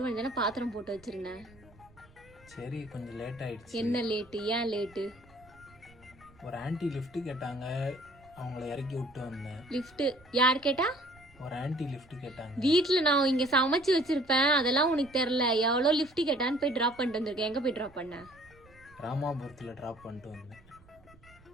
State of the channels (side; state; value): right; noise; rumble, 26 dB below the sound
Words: தானே பாத்திரம் போட்டு வச்சிருந்தேன். சரி, கொஞ்சம் லேட் ஆயிடுச்சு. என்ன லேட்டு? ஏன் லேட்டு? ஒரு ஆன்ட்டி லிஃப்ட் கேட்டாங்க, அவங்கள இறக்கி விட்டு வந்தேன். லிஃப்ட் யார் கேட்டா? ஒரு ஆன்ட்டி லிஃப்ட் கேட்டாங்க. வீட்டுல நான் இங்க சமைச்சு வச்சிருப்பேன், அதெல்லாம் உனக்கு தெரியல. எவ்வளோ லிஃப்ட் கேட்டான்னு போய் டிராப் பண்ணிட்டு வந்திருக்கேன். எங்க போய் டிராப் பண்ண? ராமாபுரத்தில் ட்ராப் பண்ணிட்டு வந்தேன்.